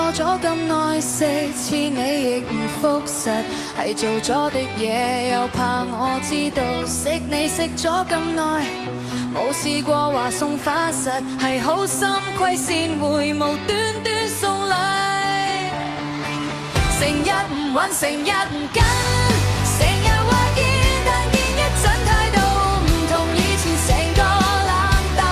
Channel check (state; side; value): identical; both; correlation 1.00